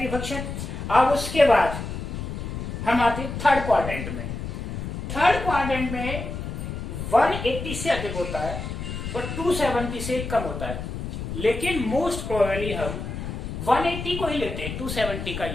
फंक्शन। अब उसके बाद हम आते हैं थर्ड क्वाड्रेंट में। थर्ड क्वाड्रेंट में 180 से अधिक होता है और 270 से कम होता है, लेकिन मोस्ट प्रोबेबली हम 180 को ही लेते हैं, 270 का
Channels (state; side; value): noise; left; rumble, 6 dB below the sound